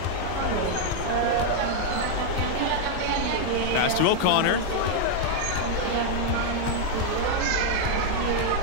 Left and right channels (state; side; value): different; both; correlation 0.00